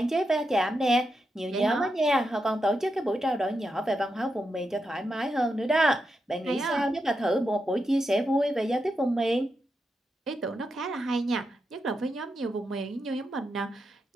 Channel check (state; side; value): normal; both; correlation 0.86